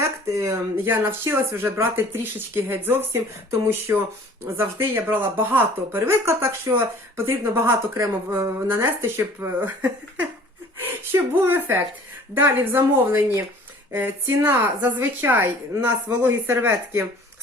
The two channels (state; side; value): normal; both; correlation 0.50